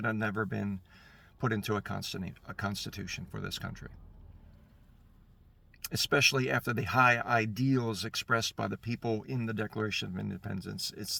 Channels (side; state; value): both; identical; correlation 1.00